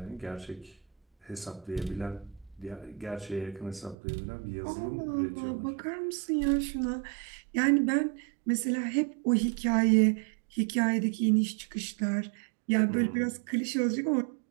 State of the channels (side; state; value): left; drops out; at 4.0 s